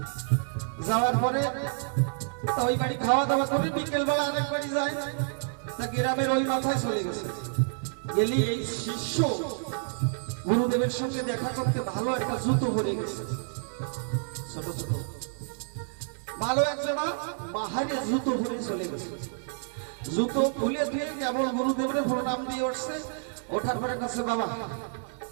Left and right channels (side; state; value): left; silent; 59 dB below the other